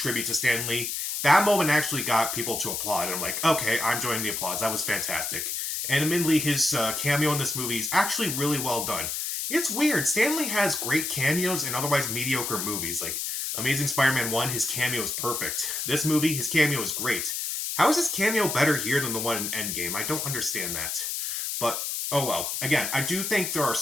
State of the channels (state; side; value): noise; left; hiss, 2 dB below the sound